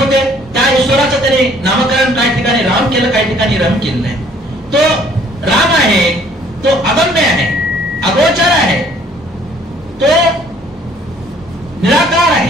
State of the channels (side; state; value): both; normal; correlation 0.59